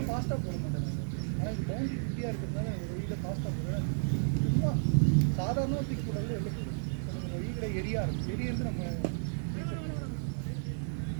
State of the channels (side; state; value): left; silent; 56 dB below the other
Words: ஃபாஸ்ட்டாக போட மாட்டேன் ஆனால் இது பவுண்டரி ஃப்ரீயாக இருக்கிறதுனால வெளியில் ஃபாஸ்ட்டாக போடுவேன் சும்மா சாதாரண தூக்கி போட்டாலும் வெளில போயிடும் நம்ம வீட்டில் எரியா இருக்கும் எரியிருந்து நம்ம